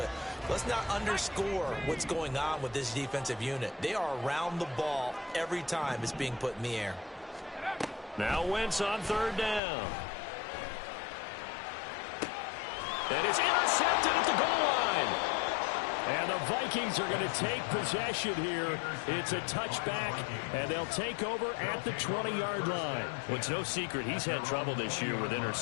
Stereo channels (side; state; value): right; drops out; at 9.6 s